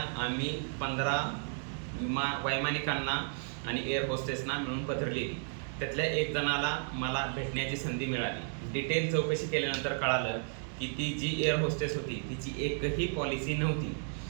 आम्ही 15 वैमानिकांना आणि एअर होस्टेसना मिळून पत्र लिहिली. त्यातल्या एक जणाला मला भेटण्याची संधी मिळाली. डिटेल चौकशी केल्यानंतर कळालं की ती जी एअर होस्टेस होती तिची एकही पॉलिसी नव्हती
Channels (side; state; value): left; silent; 56 dB below the other